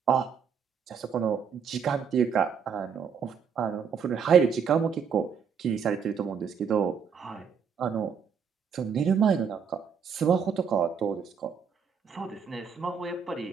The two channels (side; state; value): left; quieter; 6.7 dB